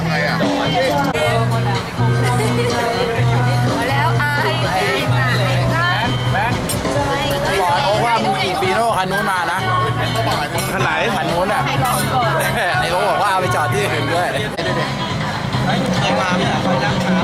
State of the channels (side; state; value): both; identical; correlation 1.00